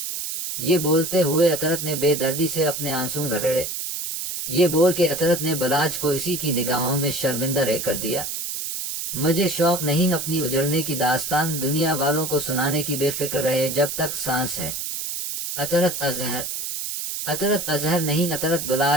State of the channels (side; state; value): right; noise; hiss, 4 dB below the sound